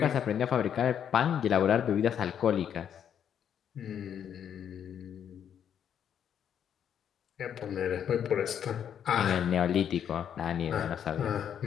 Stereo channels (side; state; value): right; quieter; 8.8 dB